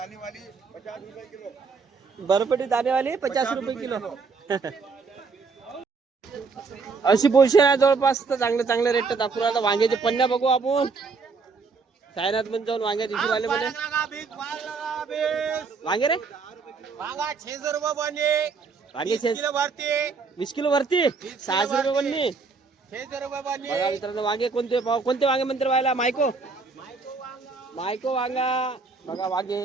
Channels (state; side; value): quieter; left; 4.7 dB